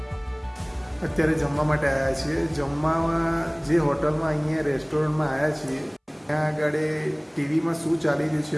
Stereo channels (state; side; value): identical; both; correlation 1.00